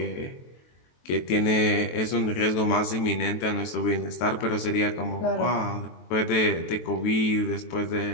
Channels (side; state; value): right; late; 23 ms